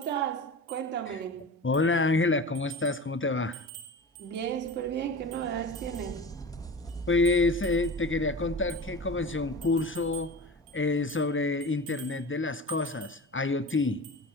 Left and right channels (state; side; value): normal; both; correlation 0.32